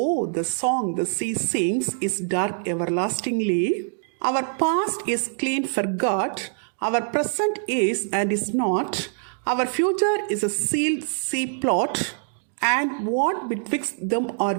the song the sea sings is dark everlastingly. Our past is clean forgot, our present is and is not, our future is a sealed sea plot, and what betwixt them are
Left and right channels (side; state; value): left; silent; digital silence